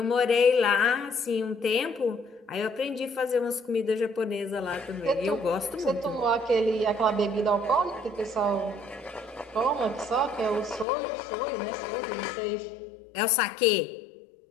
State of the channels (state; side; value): drops out; right; at 10.9 s